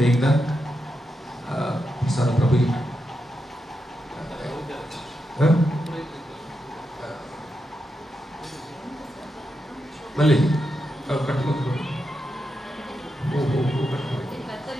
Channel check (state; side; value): normal; both; correlation 0.86